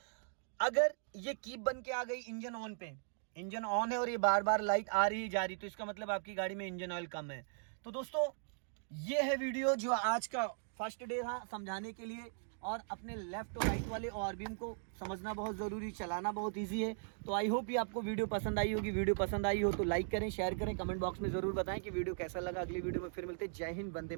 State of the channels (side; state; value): left; silent; digital silence